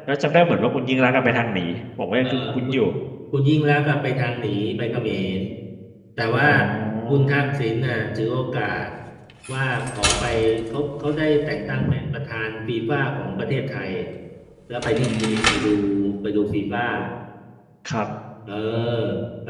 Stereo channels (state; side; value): identical; both; correlation 1.00